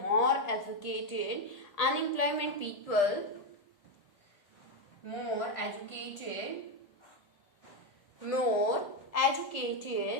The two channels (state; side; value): late; right; 1.8 ms